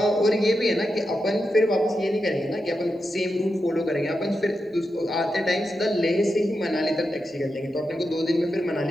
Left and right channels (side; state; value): both; normal; correlation 0.88